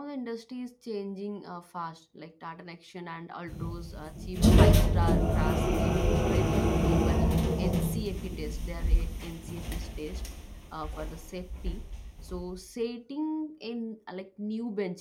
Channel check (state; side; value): identical; both; correlation 1.00